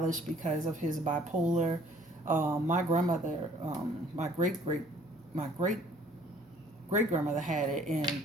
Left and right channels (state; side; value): normal; both; correlation 0.57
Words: because of his bipolar. My grandmother, my great grandmother had it, and